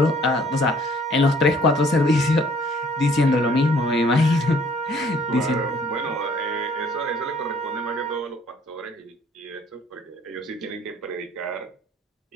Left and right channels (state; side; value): normal; both; correlation 0.59